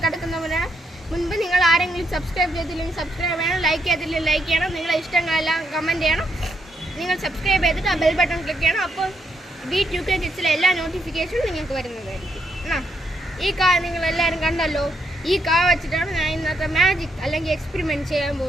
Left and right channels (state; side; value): normal; both; correlation 0.78